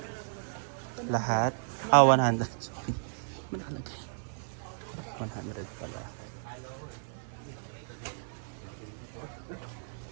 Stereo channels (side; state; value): left; silent; 55 dB below the other